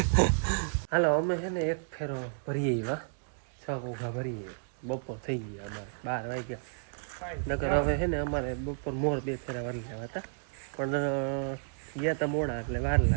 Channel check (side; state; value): left; silent; digital silence